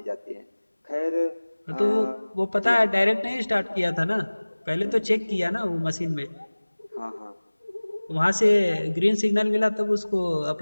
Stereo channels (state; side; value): inverted; both; correlation -1.00